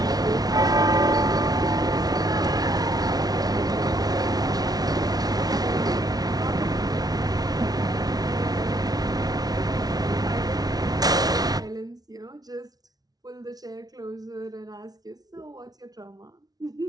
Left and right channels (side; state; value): left; late; 0.19 ms